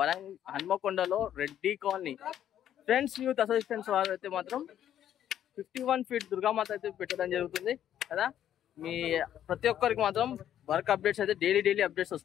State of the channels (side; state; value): right; quieter; 10.7 dB